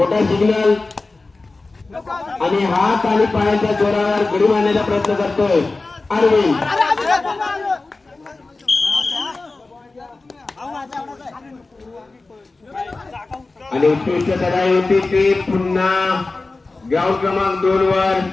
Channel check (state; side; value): quieter; right; 3.5 dB